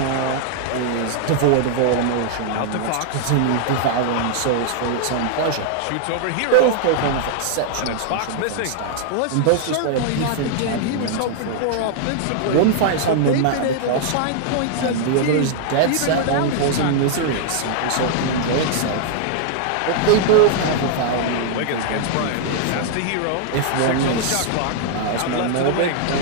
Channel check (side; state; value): both; different; correlation -0.01